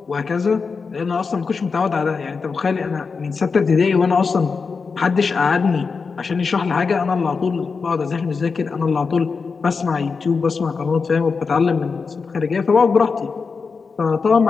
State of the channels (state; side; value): quieter; right; 4.9 dB